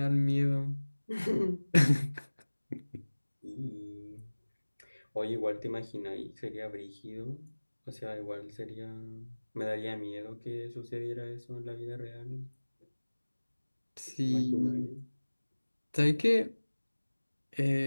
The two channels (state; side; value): inverted; both; correlation -1.00